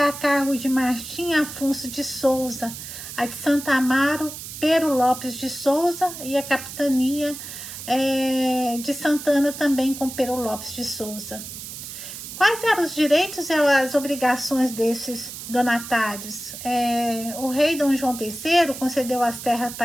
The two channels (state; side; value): noise; right; hiss, 10 dB below the sound